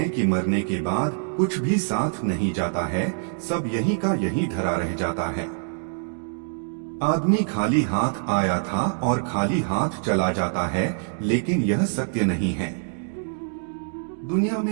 कि मरने के बाद कुछ भी साथ नहीं जाता है, सब यहीं का यहीं धरा रह जाता है। आदमी खाली हाथ आया था और खाली हाथ चला जाता है, लेकिन यह सत्य नहीं है। दुनिया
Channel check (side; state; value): left; silent; digital silence